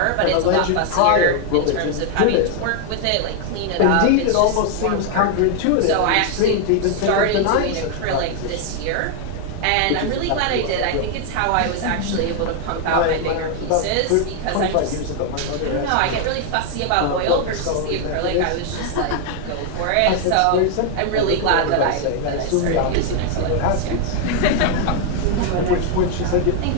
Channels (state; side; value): different; both; correlation 0.00